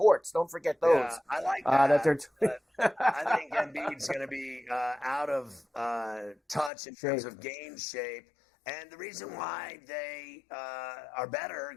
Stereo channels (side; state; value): right; drops out; at 6.7 s